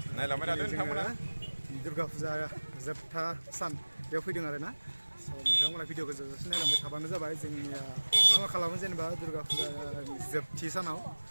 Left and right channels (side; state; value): both; inverted; correlation -1.00